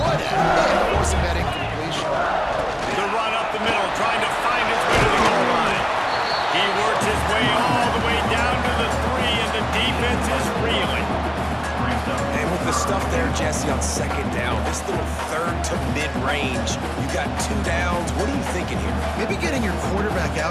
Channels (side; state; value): both; identical; correlation 1.00